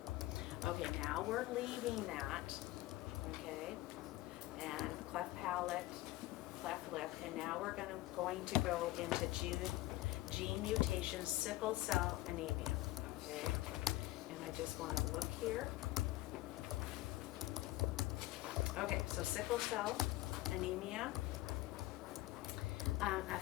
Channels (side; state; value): right; quieter; 17.5 dB